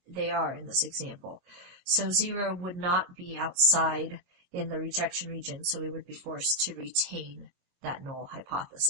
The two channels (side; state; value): left; late; 22 ms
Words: they are in this example. So 0 would not be outside in the rejection region, so we would be forced to retain that null